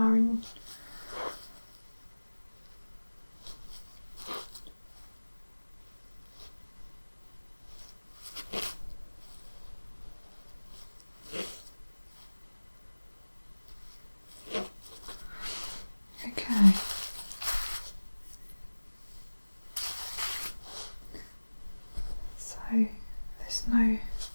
in. Okay. So there's no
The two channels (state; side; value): inverted; both; correlation -1.00